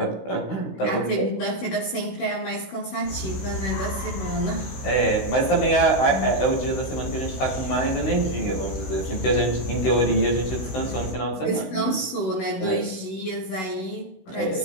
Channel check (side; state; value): right; late; 16 ms